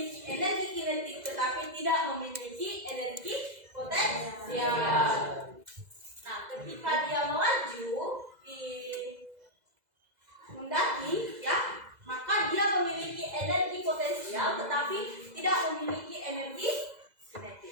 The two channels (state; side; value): late; left; 2.0 ms